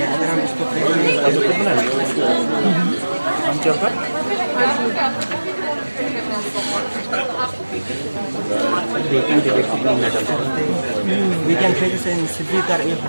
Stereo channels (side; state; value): both; inverted; correlation -1.00